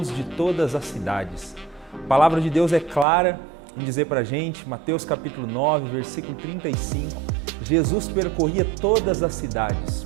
de todas as cidades. A palavra de Deus é clara em dizer para a gente, Mateus capítulo 9, versículo 35, Jesus percorria todas as cidades,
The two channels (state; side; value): drops out; left; at 3.1 s